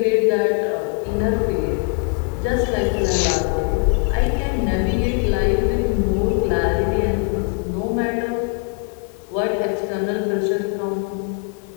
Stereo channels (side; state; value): right; quieter; 36.0 dB